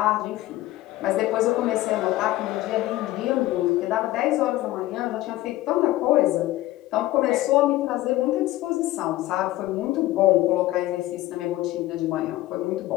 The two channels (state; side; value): quieter; right; 16.4 dB